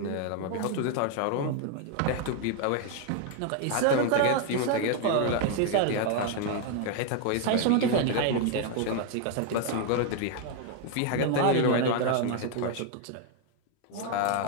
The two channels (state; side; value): different; both; correlation 0.01